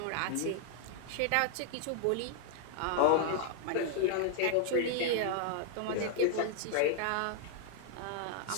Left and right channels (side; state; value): both; different; correlation 0.00